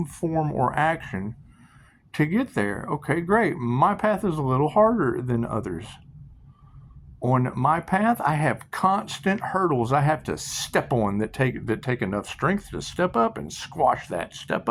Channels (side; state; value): both; identical; correlation 1.00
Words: form or action to get there. Okay, great. My path is a little harder than others. On my path, I have constant hurdles I have to step on that take enough strength to step up and squash that. Step